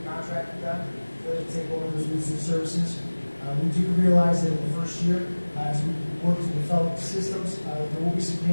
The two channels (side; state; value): both; inverted; correlation -1.00